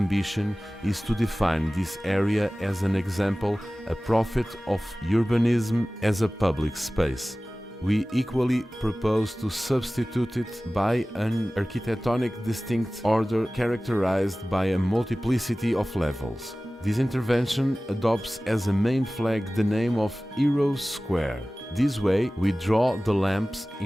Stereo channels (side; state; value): both; normal; correlation 0.97